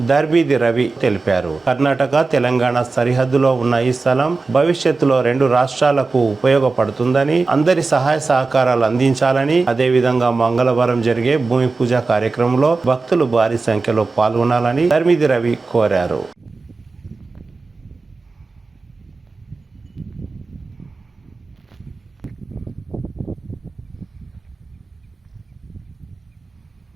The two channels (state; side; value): quieter; left; 3.9 dB